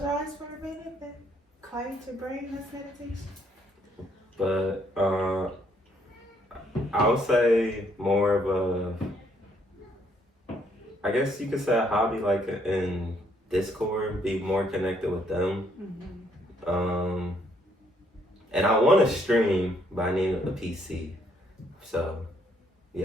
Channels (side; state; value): both; normal; correlation 0.69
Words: your eyes for a minute, then quiet your brain. That's meditation. But I would say more of I guess you could say a hobby, like in Discord, be more connected with them. And I want to stream, but I need a PC. So,